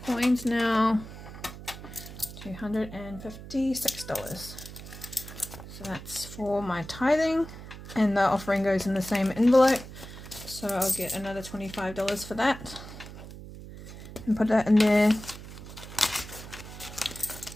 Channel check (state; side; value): noise; right; hum, 13 dB below the sound